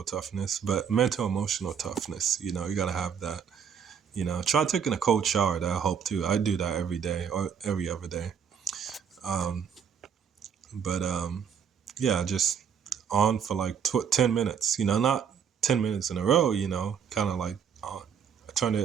toughness, but mental, emotional toughness. You got to have that. Try taking a cold shower. That'll help too. I do that every day or every other day. Um, but yeah, just on for like 10 minutes, not 10 minutes in a row, kind of like I turn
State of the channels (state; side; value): quieter; left; 7.6 dB